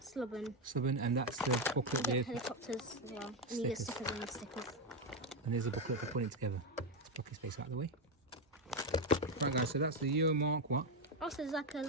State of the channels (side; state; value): both; normal; correlation 0.08